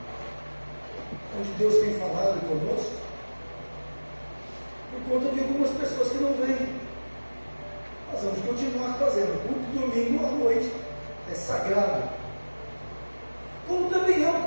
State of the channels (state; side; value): inverted; both; correlation -1.00